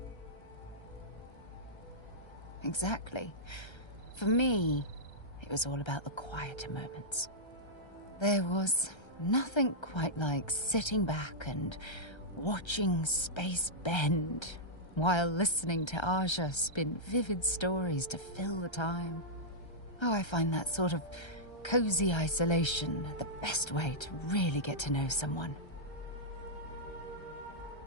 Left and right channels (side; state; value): right; late; 1.3 ms